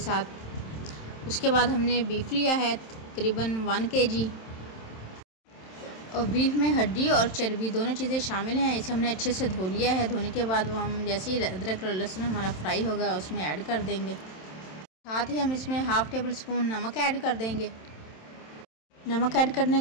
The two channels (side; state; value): right; late; 27 ms